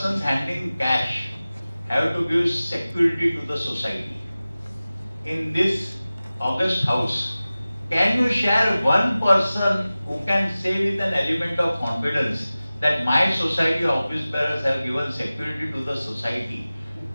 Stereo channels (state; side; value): inverted; both; correlation -0.97